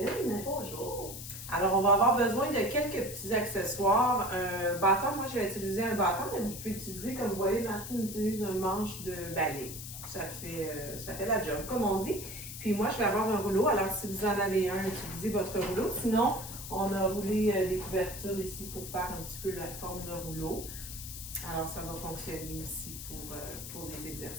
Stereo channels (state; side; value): noise; left; hiss, 10 dB below the sound